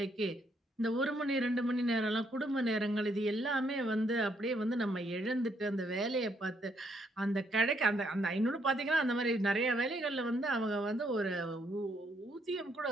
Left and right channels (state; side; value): normal; both; correlation 0.72